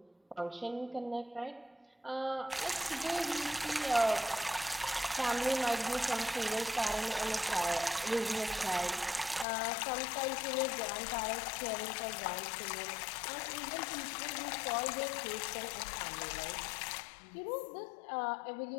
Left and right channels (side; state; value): right; drops out; at 9.5 s